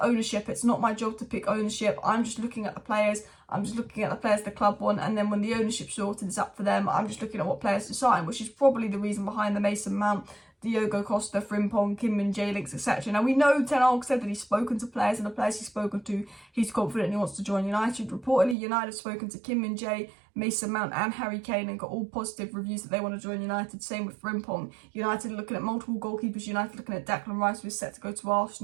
ownership, it's not my job to pick ownership. I'm just looking at the players. I'm just looking at the players the club want. And then when the ownership's sorted, it's up for them. I'm just looking at what players to sign, which is probably the reason behind the Mason Mount, Diogo Costa, Frimpong, Kim Min-jae links, etc. Now, we know Ten Hag said that he's spoken to players, and the players he's spoken to, he's confident he wants to join United. Reportedly, United have spoken to Kim Min-jae, Mason Mount and Harry Kane and got all positive reviews that they want to join United. Same with Frimpong. United looking at multiple goalkeepers. United looking at Declan Rice, who's set to go to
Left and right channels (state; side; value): drops out; left; at 18.6 s